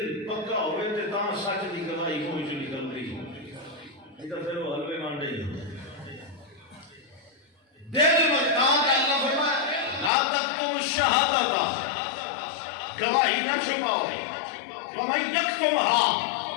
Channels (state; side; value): drops out; right; at 10.1 s